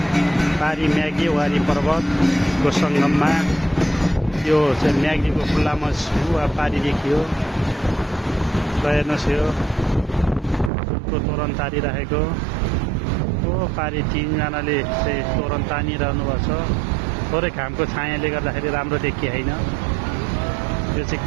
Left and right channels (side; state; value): left; drops out; at 10.7 s